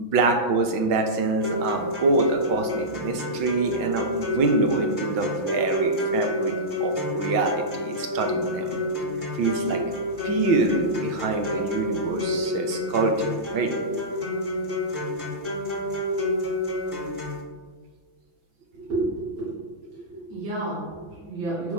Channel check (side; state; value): left; late; 6.0 ms